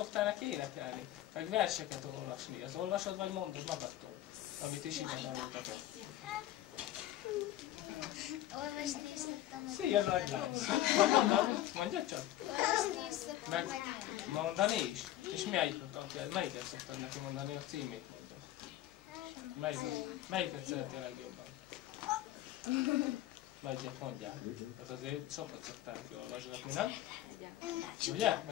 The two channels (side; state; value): right; quieter; 13.8 dB